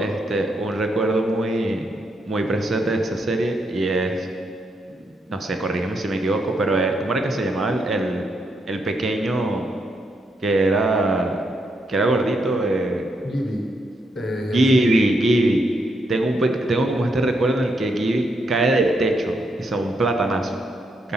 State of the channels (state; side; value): normal; both; correlation 0.79